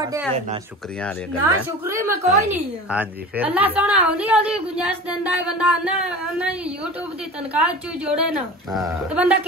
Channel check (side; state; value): both; normal; correlation 0.35